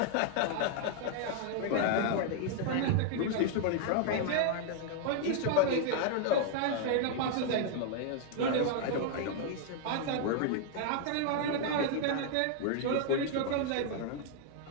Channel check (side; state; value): both; different; correlation 0.00